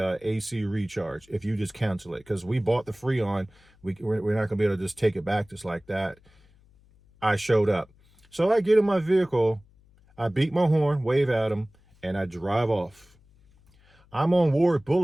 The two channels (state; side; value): noise; left; hum, 30 dB below the sound